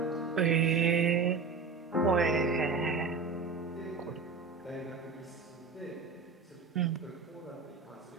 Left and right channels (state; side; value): quieter; left; 4.6 dB